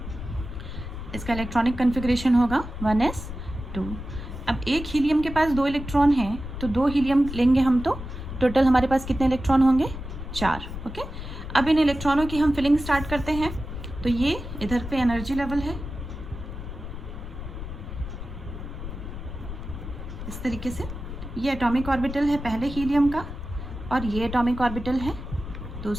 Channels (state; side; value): noise; left; rumble, 9 dB below the sound